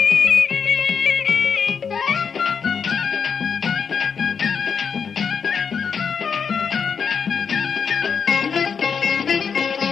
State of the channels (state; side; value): quieter; right; 6.4 dB